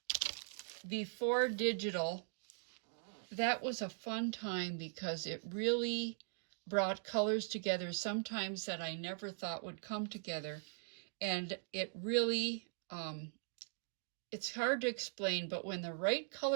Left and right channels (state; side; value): silent; left; digital silence